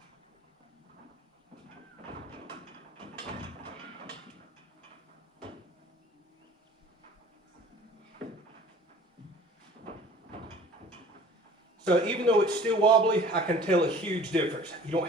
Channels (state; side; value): normal; both; correlation 0.47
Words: So even though it's still wobbly, I can tell a huge difference. You